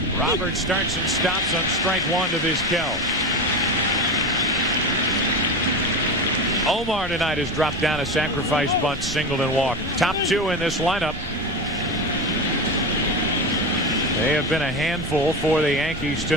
Roberts starts and stops on strike 1 to Vizquel. Omar tonight has dropped down a sacrifice bunt, singled and walked. Top 2 in this lineup. They have been a handful for the Yankees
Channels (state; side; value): normal; both; correlation 0.22